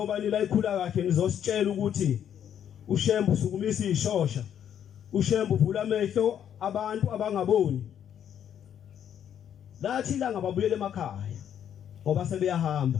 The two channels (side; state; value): right; quieter; 9.4 dB